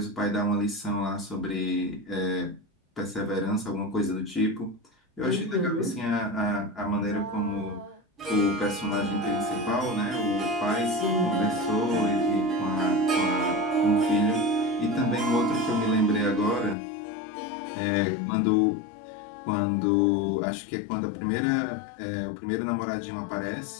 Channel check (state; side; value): drops out; right; at 16.8 s